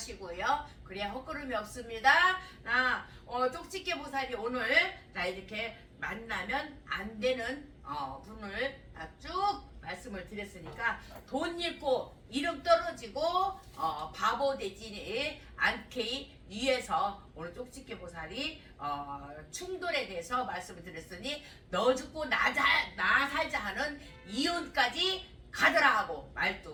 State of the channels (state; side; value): identical; both; correlation 1.00